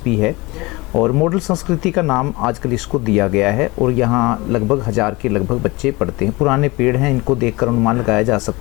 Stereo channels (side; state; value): right; quieter; 23.0 dB